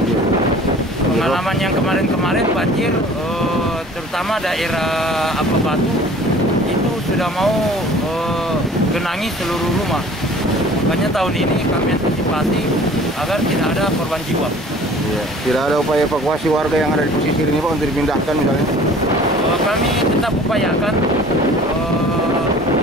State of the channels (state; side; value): normal; both; correlation 0.48